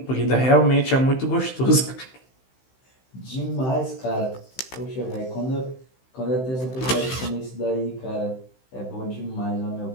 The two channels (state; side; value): late; right; 15 ms